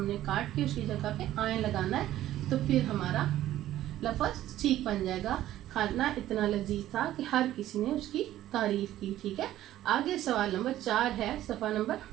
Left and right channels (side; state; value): left; quieter; 13.5 dB